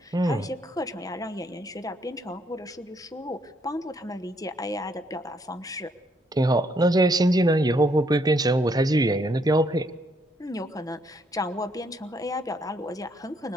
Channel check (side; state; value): both; normal; correlation 0.71